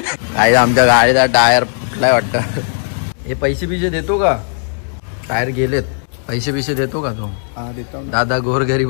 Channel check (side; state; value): right; silent; 63 dB below the other